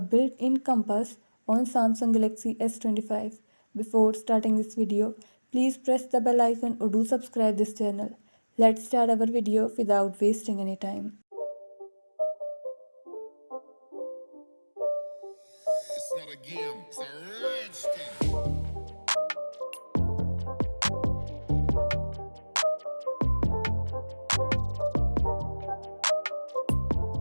compass on Samsung Galaxy S25. Before starting this video, please press the bell icon or do subscribe this channel. Let's start our video without wasting any time.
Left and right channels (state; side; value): inverted; both; correlation -1.00